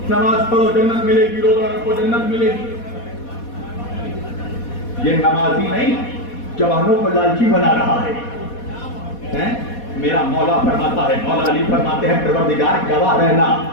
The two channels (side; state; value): right; late; 4.2 ms